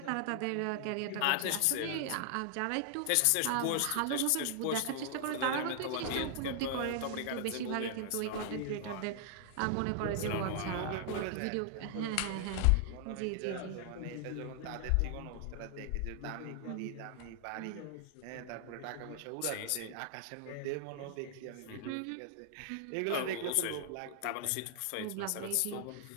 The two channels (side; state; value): both; different; correlation 0.00